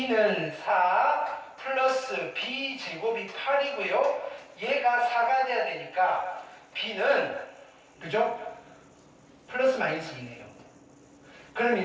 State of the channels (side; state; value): both; identical; correlation 1.00